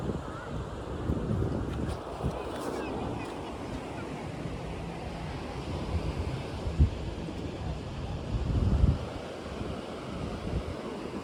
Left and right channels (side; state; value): both; identical; correlation 1.00